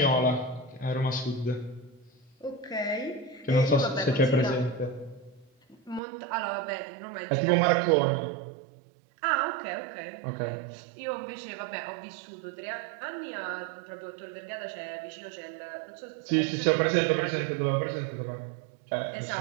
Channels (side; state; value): left; drops out; at 6.0 s